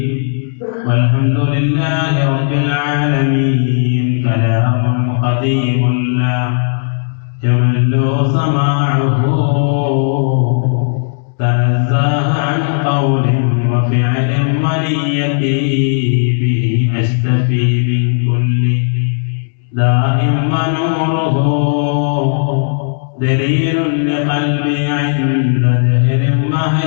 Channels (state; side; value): silent; right; digital silence